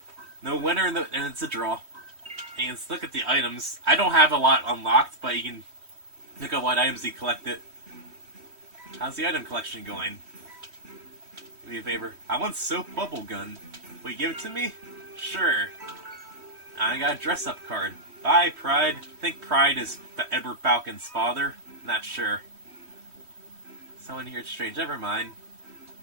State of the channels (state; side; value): late; left; 3.1 ms